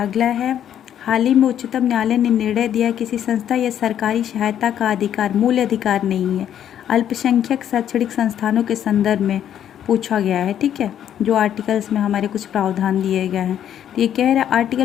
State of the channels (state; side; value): quieter; right; 10.1 dB